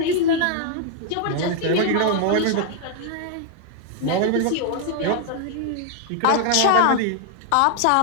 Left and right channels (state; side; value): different; both; correlation 0.00